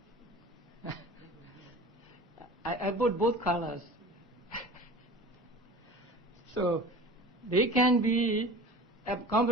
I put both colors. So they can be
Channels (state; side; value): normal; both; correlation 0.39